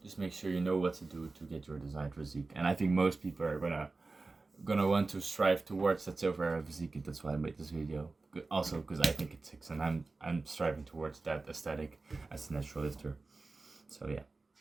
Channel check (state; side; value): quieter; left; 3.6 dB